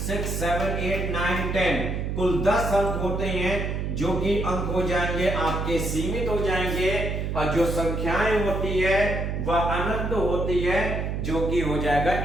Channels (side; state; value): right; noise; hum, 2 dB below the sound